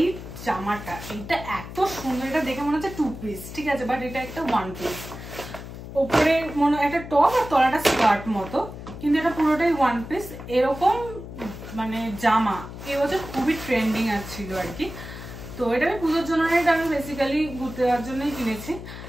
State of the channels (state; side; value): noise; left; hum, 12 dB below the sound